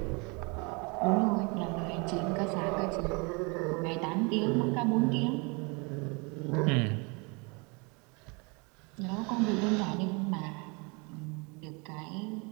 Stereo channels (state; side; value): quieter; left; 30.7 dB